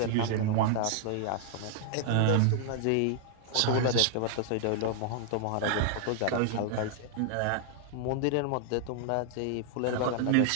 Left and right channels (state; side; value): different; both; correlation 0.00